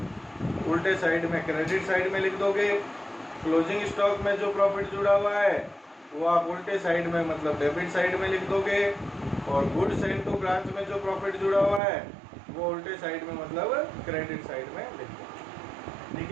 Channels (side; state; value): left; drops out; at 11.8 s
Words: उल्टे साइड में क्रेडिट साइड में लिख दोगे, क्लोजिंग स्टॉक में जो प्रॉफिट जुड़ा हुआ है वो आप उल्टे साइड में मतलब डेबिट साइड में लिख दोगे, और गुड्स एंड टू ब्रांच में जो प्रॉफिट जुड़ा हुआ है वो उल्टे साइड में मतलब क्रेडिट साइड में लिख दोगे, ठीक